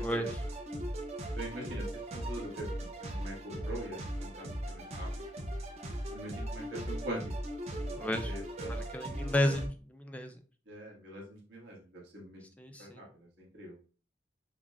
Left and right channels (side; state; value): both; normal; correlation 0.77